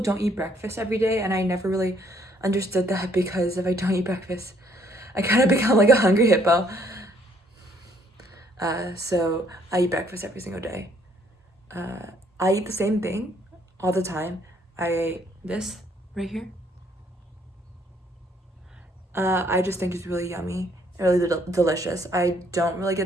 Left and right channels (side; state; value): both; normal; correlation 0.66